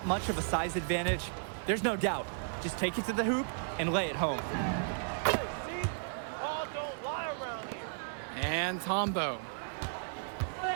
much of a size advantage, there's no doubt. Just take it to the hoop and lay it home. And Tombo.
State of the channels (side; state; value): left; silent; digital silence